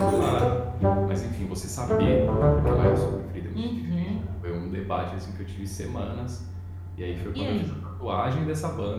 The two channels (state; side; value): identical; both; correlation 1.00